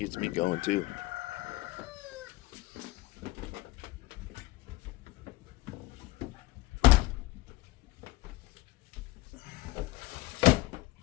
me going too.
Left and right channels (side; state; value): right; quieter; 19.6 dB